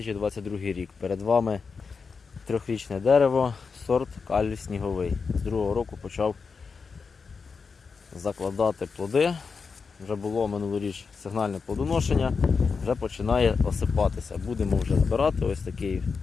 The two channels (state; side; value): quieter; right; 5.1 dB